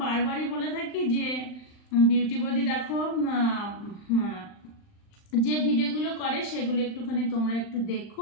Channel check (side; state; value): right; late; 39 ms